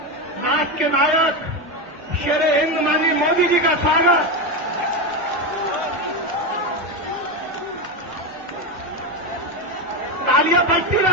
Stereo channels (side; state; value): both; normal; correlation 0.13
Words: राष्ट्र के नायक शेरे हिंद माननीय मोदी जी का स्वागत। तालियां बजती